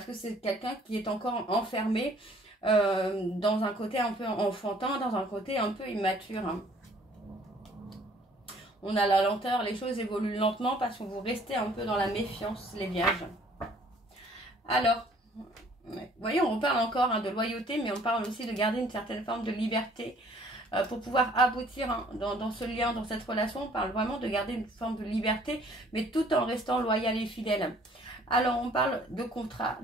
que c'est quelqu'un qui est encore enfermé dans un côté un peu enfantin, dans un côté un peu immature. Hein. On a la lenteur, les choses évoluent lentement parce que vous restez un peu dans la méfiance, les vierges. Alors, vous voyez, on parle encore de loyauté, mais on parle aussi de garder une certaine forme de liberté pour pouvoir aboutir dans ce lien, dans cette relation. On parle vraiment de garder une forme de liberté, mais tout en restant loyal et fidèle. Alors, on parle de contrat,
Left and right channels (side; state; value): both; normal; correlation 0.57